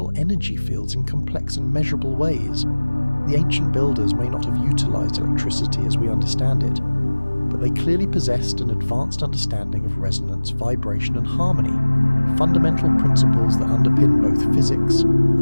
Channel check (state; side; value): inverted; both; correlation -1.00